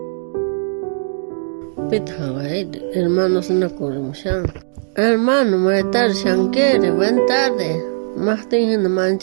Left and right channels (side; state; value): left; silent; digital silence